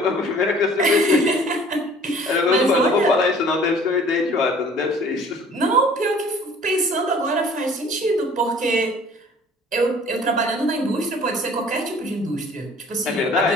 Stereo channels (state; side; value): normal; both; correlation 0.51